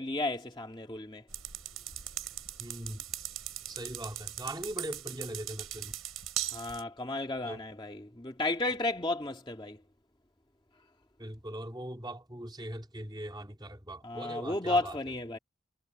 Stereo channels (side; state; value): both; normal; correlation 0.47